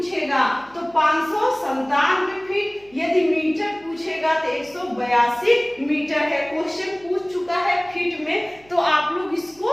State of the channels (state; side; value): noise; right; hum, 27 dB below the sound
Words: तो 597 फीट, यदि मीटर पूछेगा तो 182 मीटर है। क्वेश्चन पूछ चुका है फीट में, तो आप लोग